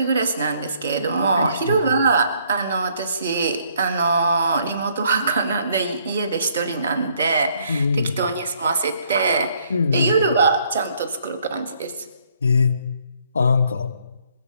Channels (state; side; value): inverted; both; correlation -0.67